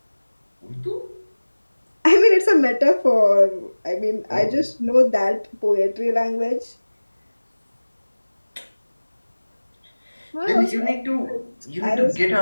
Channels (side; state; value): both; inverted; correlation -1.00